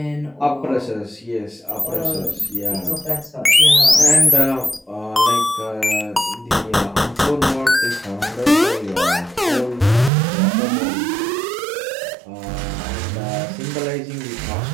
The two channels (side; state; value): left; drops out; at 10.1 s